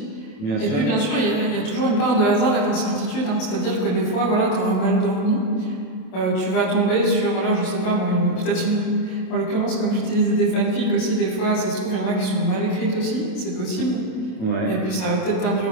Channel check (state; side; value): late; right; 27 ms